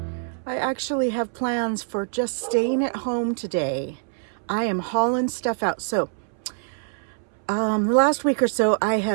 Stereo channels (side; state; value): left; silent; 62 dB below the other